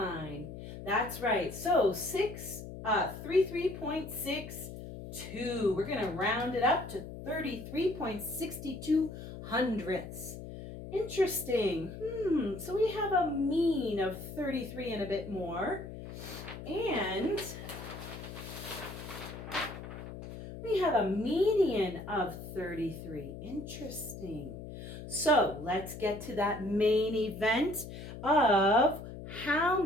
That's right. So 33.62. We're going to round it up to 33.62 hundredths. Interesting. So we have a mean of 33 and a bit more. And we have a median of 33. Interesting. So let's get to that main event of how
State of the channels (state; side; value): noise; left; hum, 11 dB below the sound